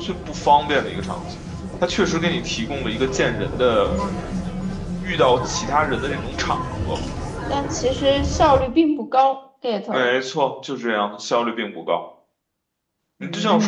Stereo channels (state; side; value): identical; both; correlation 1.00